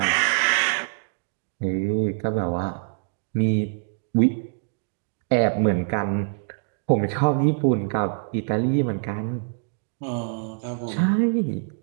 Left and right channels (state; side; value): silent; left; digital silence